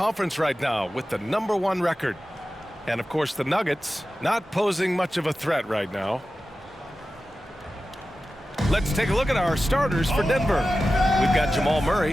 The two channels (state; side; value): normal; both; correlation 0.94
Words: right now with the #1 record. And of course the Nuggets not posing much of a threat right now. Let's take a look at our starters for Denver. We've got Jamal